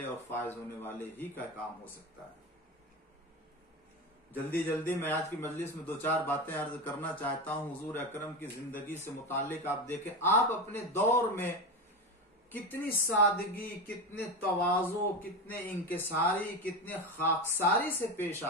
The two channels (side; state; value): both; normal; correlation 0.20